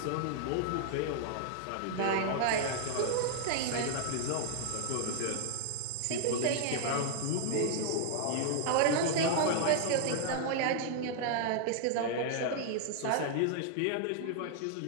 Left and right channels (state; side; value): different; both; correlation 0.00